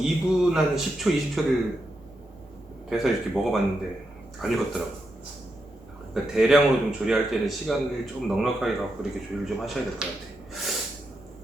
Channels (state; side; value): normal; both; correlation 0.85